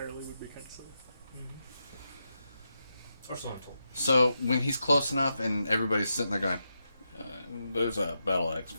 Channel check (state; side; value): inverted; both; correlation -0.87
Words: would be kind of silly. Or so I'm told. So when he's close enough and everybody's sitting there going, "There's a battle axe